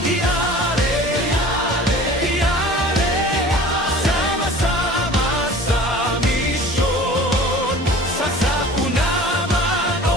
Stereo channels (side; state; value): both; normal; correlation 0.43